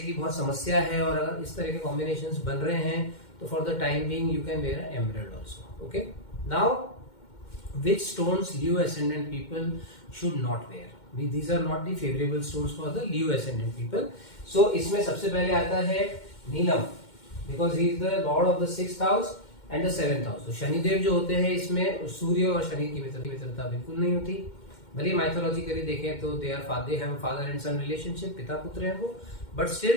बहुत समस्या है और अगर इस तरह के कॉम्बिनेशंस बन रहे हैं तो for the time being you can wear emerald also. Okay, now which stones Leo ascendant people should not wear. These are not the favorable stones for the Leo ascendant people. So इसमें सबसे पहले आता है नीलम, because he is the lord of the 6th house and the 7th house. तो शनिदेव जो होते हैं इसमें सूर्य और शनि की मित्रता बिल्कुल नहीं होती. भले माइथोलॉजिकली देखें तो they have father and sun relationship, पिता पुत्र है वो, बट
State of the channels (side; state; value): right; late; 2.1 ms